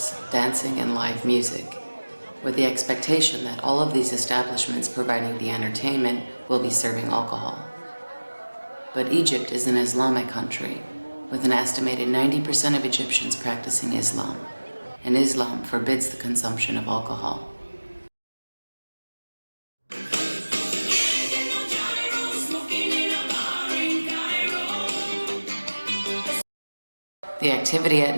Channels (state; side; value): inverted; both; correlation -1.00